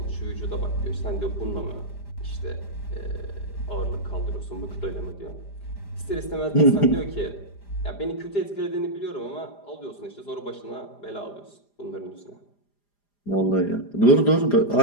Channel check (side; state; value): right; late; 4.9 ms